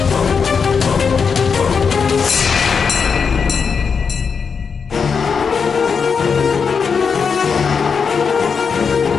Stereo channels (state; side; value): quieter; right; 5.9 dB